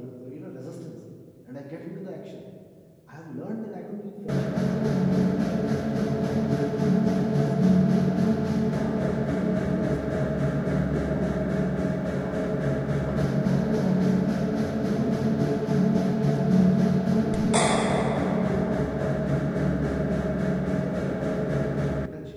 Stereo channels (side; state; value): both; identical; correlation 1.00